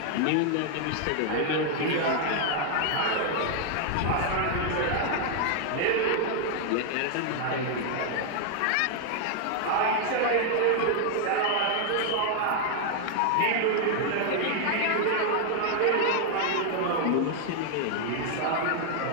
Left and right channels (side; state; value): both; different; correlation 0.00